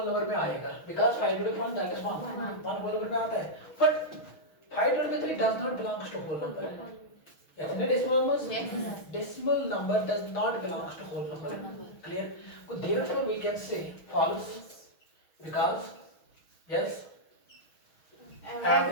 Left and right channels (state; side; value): late; right; 6.3 ms